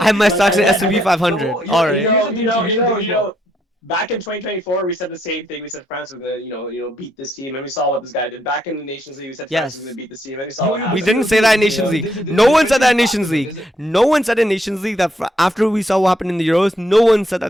have my like, stocks in S&P and 500. All right. here's the thing too. Here's the thing as well. back in 2024, we said the same thing. We said France was gonna, beat this team, and we saw what this guy did. Back in the Nations League, we said France was gonna Yes. beat this team, and we saw Yo, what yo, We happened. didn't still say too. that in There's Nations a League. there's a No there's a one said that in difference Nations after though. League. No one said in Nations League that after we saw what happened in the Euros, no one said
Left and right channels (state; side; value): normal; both; correlation 0.74